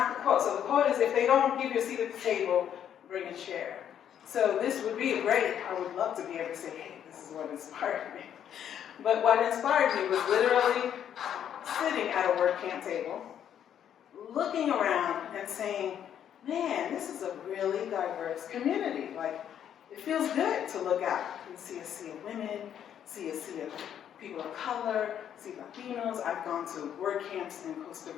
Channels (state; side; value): quieter; right; 9.5 dB